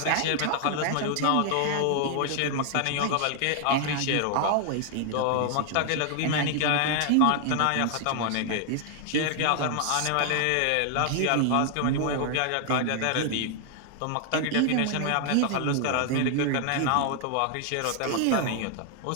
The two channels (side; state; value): both; different; correlation 0.00